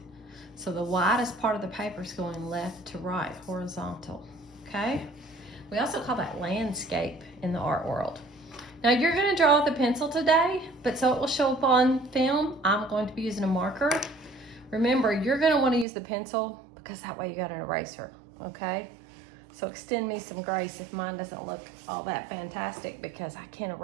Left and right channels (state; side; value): drops out; left; at 15.9 s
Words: So the widest part of the paper is going left to right, horizontal, okay? We also call that landscape in the art world. Now you're going to draw with a pencil today, but so it will show up on film, I'm going to be using a marker. Remember, you're going to want to use the pencil because that way you got an eraser, okay? So extend me some grace if mine doesn't look all that fantastic because I can't